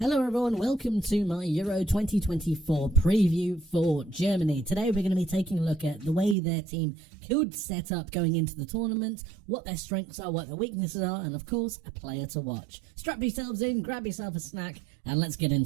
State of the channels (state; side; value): drops out; left; at 6.4 s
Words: Hello everyone, welcome to my Euro 2024 preview for Germany. Today we're going to be taking a look at the way their team could set up going into the tournament, what their strengths are, what their weaknesses are, and of course, a player to watch. Strap yourselves in, grab yourself a snack, and let's get